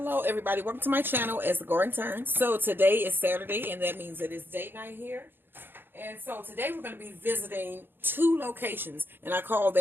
everybody, welcome to my channel as the Garden Turns. So today is Saturday and that means it is date night here. And so today we're going to be visiting two locations, and I call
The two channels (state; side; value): late; left; 0.10 ms